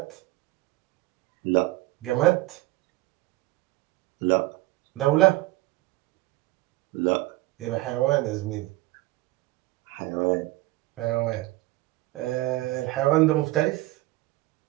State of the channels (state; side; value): quieter; left; 19.0 dB